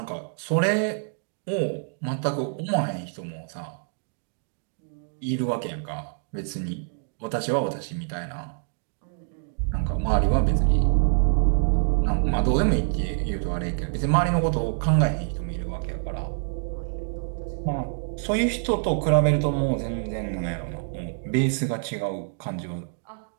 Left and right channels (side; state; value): left; silent; digital silence